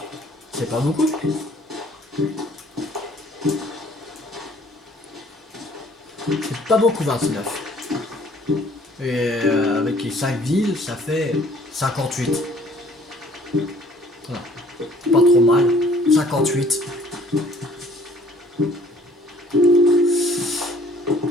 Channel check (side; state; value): both; normal; correlation 0.57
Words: C'est pas beaucoup. C'est pas beaucoup 29. Et avec les 5 villes, ça fait 58. Voilà. Pas trop mal. 58.